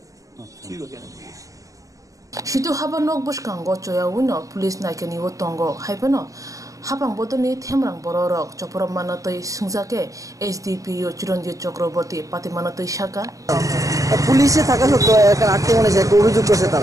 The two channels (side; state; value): left; late; 0.16 ms